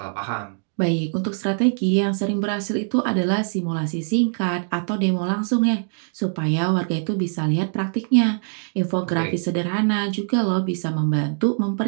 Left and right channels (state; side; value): silent; left; 64 dB below the other